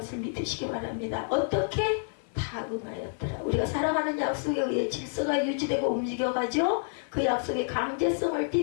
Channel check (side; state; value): right; silent; 59 dB below the other